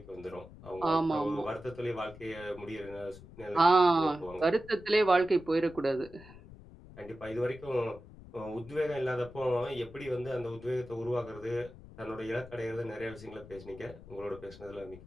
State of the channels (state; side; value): noise; left; rumble, 18 dB below the sound